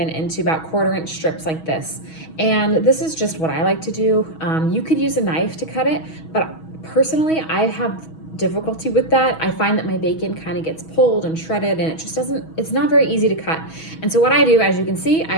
into about 1/4-inch strips like this. And this is just what I like to do. You could use a knife to cut it, but personally, I have difficulty with that. I find that my bacon kind of gets pulled and shredded and it just doesn't, it's not very easy to cut. And so what I do, as you can see,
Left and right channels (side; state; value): right; late; 6.2 ms